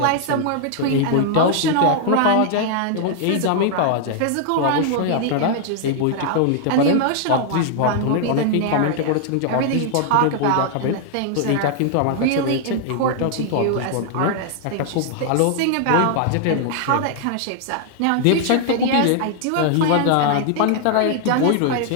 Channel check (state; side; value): different; both; correlation 0.00